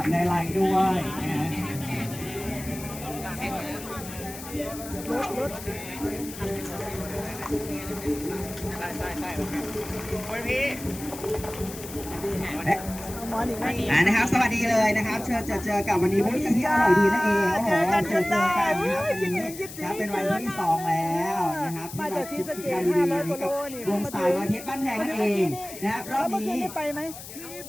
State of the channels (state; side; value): noise; left; hiss, 13 dB below the sound